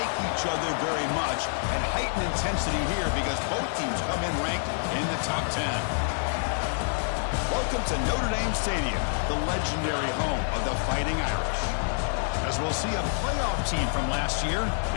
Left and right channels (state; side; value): silent; right; digital silence